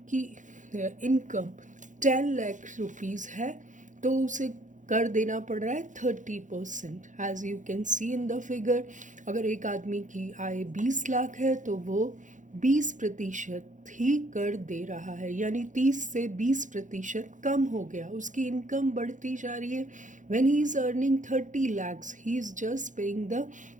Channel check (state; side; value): late; left; 0.37 ms